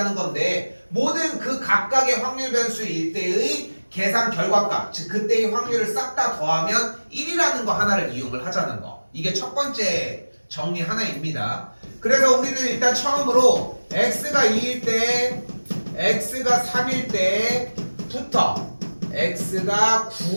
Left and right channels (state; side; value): inverted; both; correlation -1.00